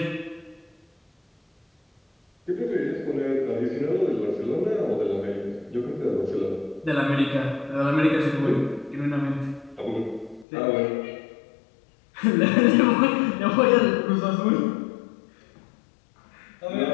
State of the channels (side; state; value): right; drops out; at 10.5 s